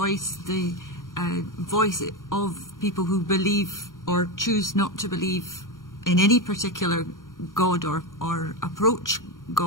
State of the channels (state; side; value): late; right; 0.89 ms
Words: the voice of people who believe or choose not to believe in any particular God or approach